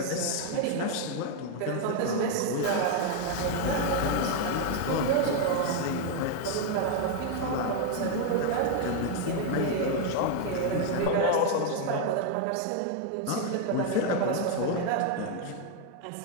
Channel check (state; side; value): different; both; correlation 0.01